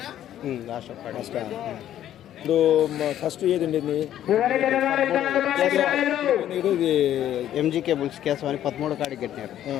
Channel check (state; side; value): quieter; right; 11.6 dB